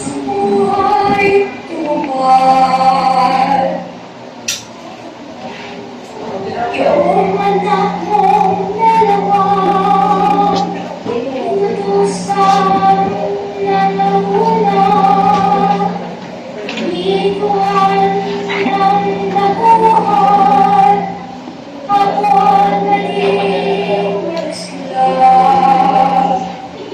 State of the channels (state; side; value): identical; both; correlation 1.00